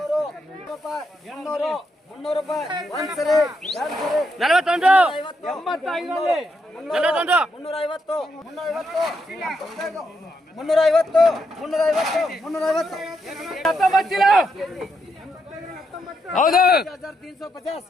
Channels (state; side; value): normal; both; correlation 0.80